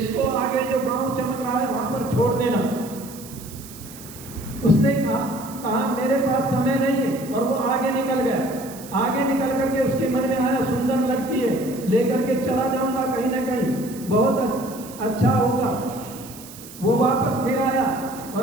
आगे जो गांव चमक रहा है वहां पर छोड़ देना। उसने कहा मेरे पास समय नहीं है, और वो आगे निकल गया। आगे निकल करके उसके मन में आया, सुंदर लगती है, लेकर के चला जाऊंगा कहीं ना कहीं, बहुत अच्छा होगा। वो वापस फिर आया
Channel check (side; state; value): right; noise; hiss, 17 dB below the sound